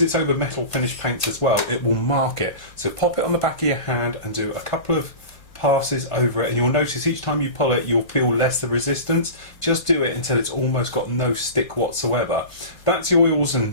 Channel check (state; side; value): late; right; 1.5 ms